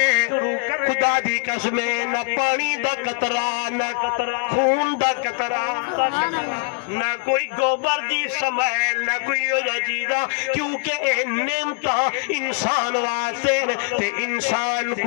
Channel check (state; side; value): quieter; right; 38.9 dB